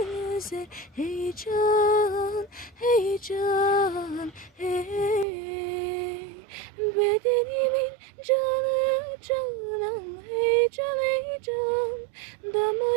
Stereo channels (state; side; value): drops out; left; at 5.2 s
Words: heyecan heyecan hey. Bedenimin canı canan heyecan heyecan,